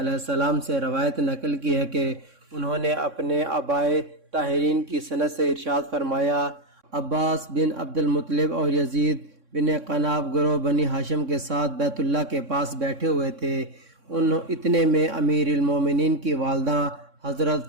السلام سے روایت نقل کی ہے کہ انہوں نے اپنے آبائے طاہرین کی سند سے ارشاد فرمایا، عباس بن عبد المطلب اور یزید بن قناب گروہ بنی ہاشم کے ساتھ بیت اللہ کے پاس بیٹھے ہوئے تھے۔ اتنے میں امیر المومنین کی والدہ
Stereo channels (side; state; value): left; late; 3.6 ms